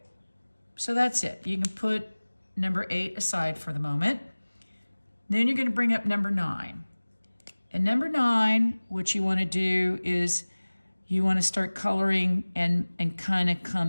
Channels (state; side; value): inverted; both; correlation -1.00